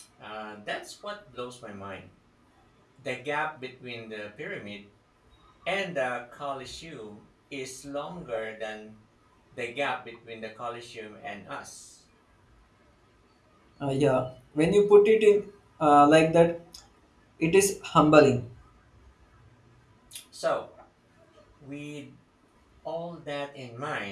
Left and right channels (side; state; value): both; identical; correlation 1.00